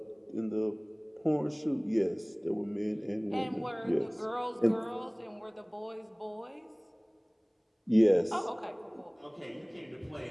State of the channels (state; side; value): identical; both; correlation 1.00